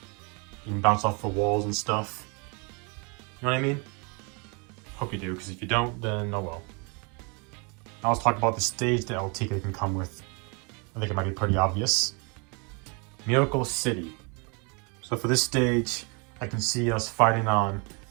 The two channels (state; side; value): quieter; left; 32.8 dB